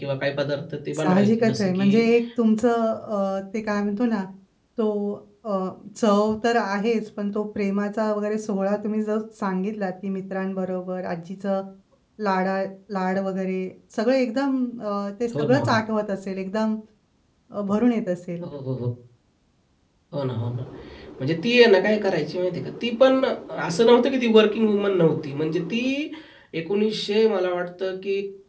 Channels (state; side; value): identical; both; correlation 1.00